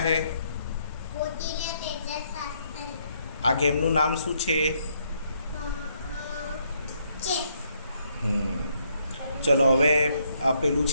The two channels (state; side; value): inverted; both; correlation -0.72